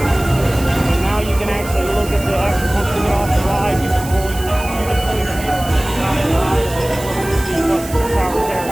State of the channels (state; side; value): noise; right; hiss, 14 dB below the sound